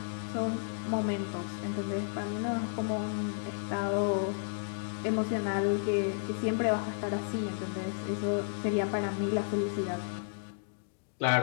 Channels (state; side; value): silent; right; digital silence